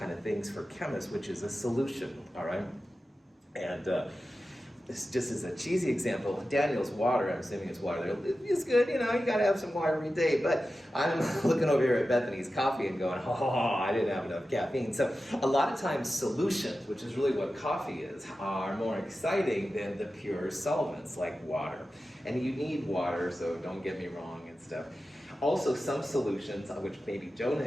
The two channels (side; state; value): both; normal; correlation 0.93